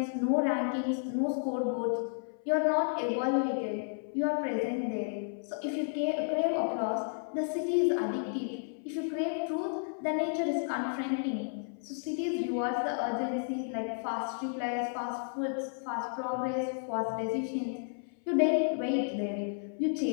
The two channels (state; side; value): silent; right; 56 dB below the other